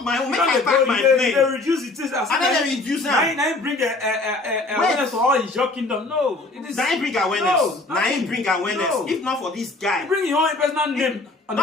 my own. Make I pack my plane. They reduce it. And then they reduce them. Now bring awareness for all his your kingdom. No, it is. Now bring awareness. Now bring awareness. If not for this guy, bring your own personal name.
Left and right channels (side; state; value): right; quieter; 3.2 dB